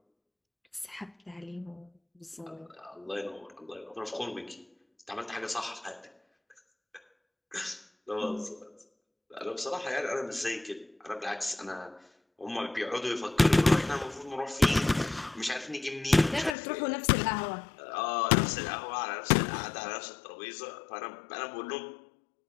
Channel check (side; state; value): right; drops out; at 16.6 s